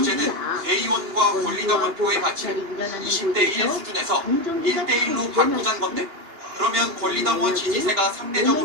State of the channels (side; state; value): left; late; 2.9 ms